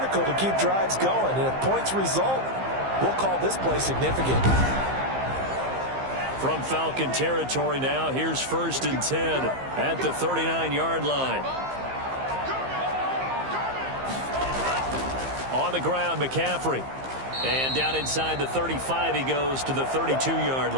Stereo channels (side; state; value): left; late; 15 ms